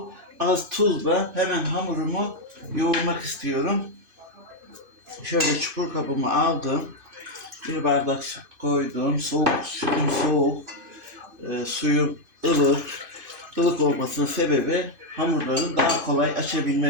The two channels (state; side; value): late; left; 2.5 ms